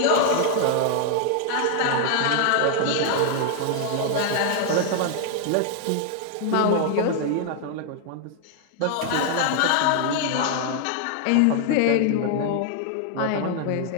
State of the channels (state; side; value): different; both; correlation 0.00